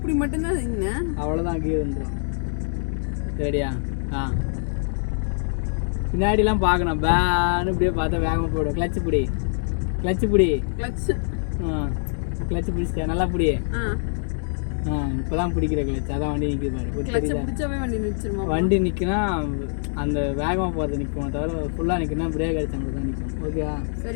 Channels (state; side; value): silent; right; digital silence